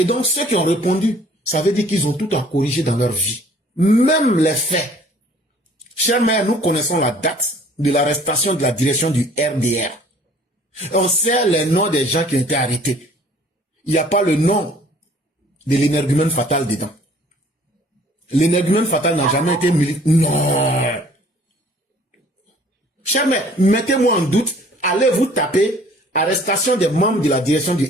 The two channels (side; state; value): both; normal; correlation 0.54